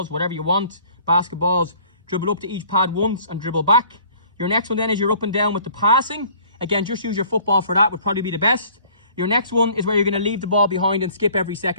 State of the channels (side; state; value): both; inverted; correlation -0.54